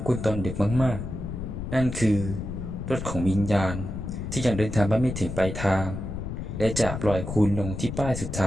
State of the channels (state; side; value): noise; left; rumble, 6 dB below the sound